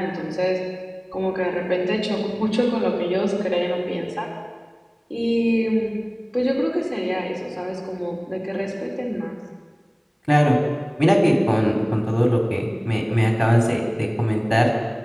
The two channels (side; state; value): both; identical; correlation 1.00